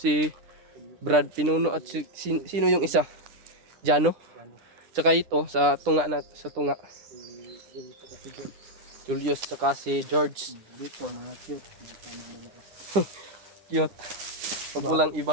Si Brad Pinuno at sino yung isa? Jano? Tsaka ito, sa tunga. Julius, tsaka si George. Dito, mga cute. Cute. Pag walang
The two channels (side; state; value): left; late; 9.9 ms